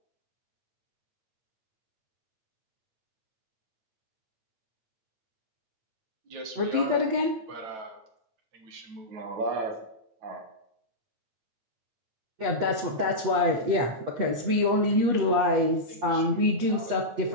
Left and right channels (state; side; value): late; left; 8.3 ms